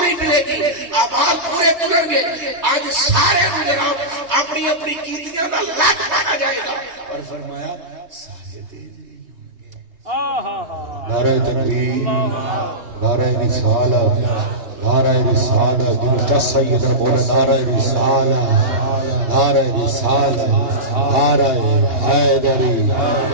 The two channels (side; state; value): left; late; 3.2 ms